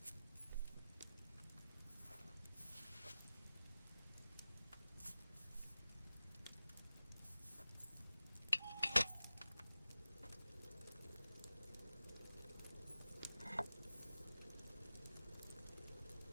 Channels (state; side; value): inverted; both; correlation -0.95